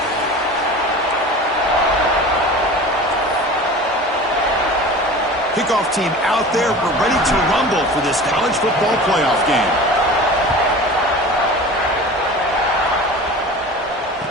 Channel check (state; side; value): normal; both; correlation 0.37